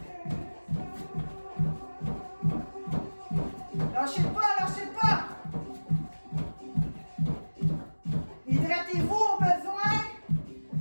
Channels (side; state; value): both; inverted; correlation -1.00